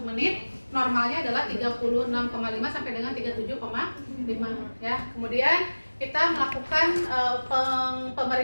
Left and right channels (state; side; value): inverted; both; correlation -1.00